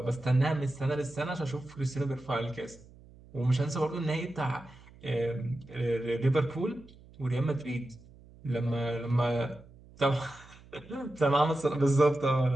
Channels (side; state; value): right; noise; hum, 23 dB below the sound